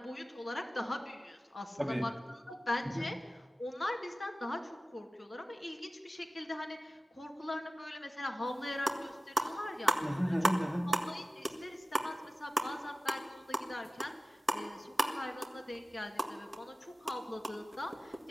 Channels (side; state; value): both; normal; correlation 0.96